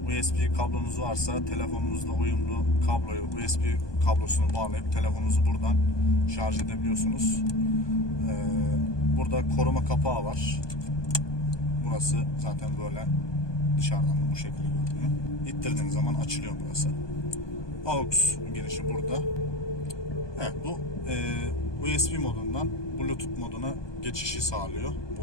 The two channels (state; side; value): late; right; 1.2 ms